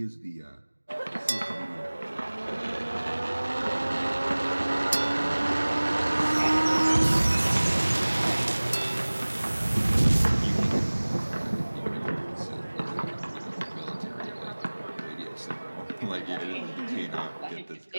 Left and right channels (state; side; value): inverted; both; correlation -1.00